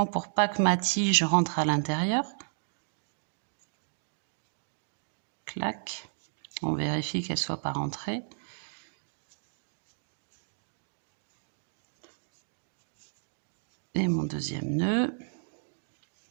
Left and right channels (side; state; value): left; silent; digital silence